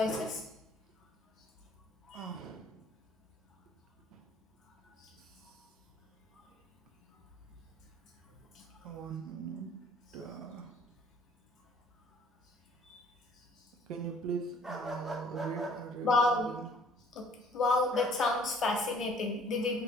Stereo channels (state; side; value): normal; both; correlation 0.57